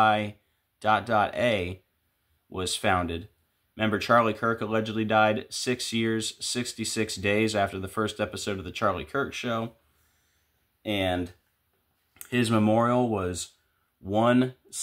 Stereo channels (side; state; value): both; identical; correlation 1.00